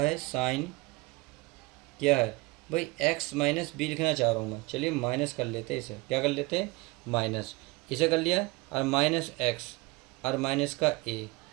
साइन क्या है भाई एक्स माइनस बी लिखना चाह रहा हूँ मैं। चलिए माइनस कर लेते हैं, इसे क्या कर लेते हैं, माइनस, इसे कर लिया, और माइनस एक्स और माइनस का ए।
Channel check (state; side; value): quieter; left; 23.9 dB